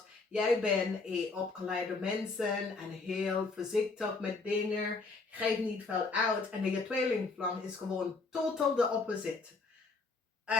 jij bent een opgeleide mensen en heel voorzichtig met dingen. Geeft niet veel uit. En je tweelingvlam is gewoon totaal de opposite.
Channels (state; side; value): quieter; right; 3.9 dB